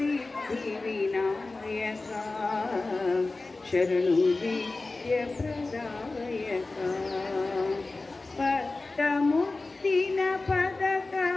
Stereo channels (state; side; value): quieter; right; 3.4 dB